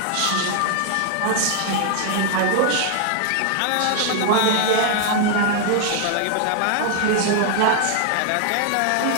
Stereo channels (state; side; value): different; both; correlation 0.00